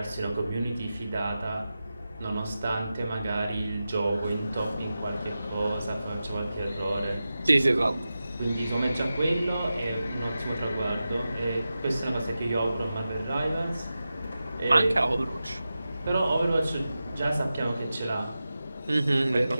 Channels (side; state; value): both; inverted; correlation -0.93